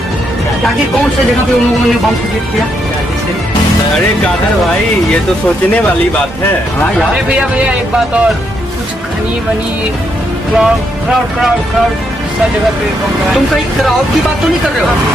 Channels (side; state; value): both; normal; correlation 0.77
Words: ताकि कौन सी जगह पे उन लोगों ने बम क्रिएट किया? अरे कादर भाई ये तो सोचने वाली बात है। हाँ यार। अरे भैया एक बात और, कुछ खनी वनी क्राउड सब जगह पे तुम कहीं क्राउड की बात तो नहीं कर रहे हो?